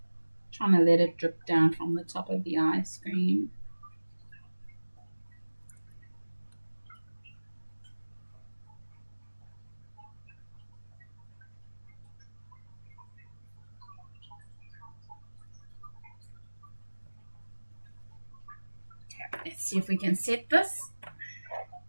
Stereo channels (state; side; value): inverted; both; correlation -1.00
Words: Trying to let it drip down from the top of the ice cream. Okay, let's see if we can set this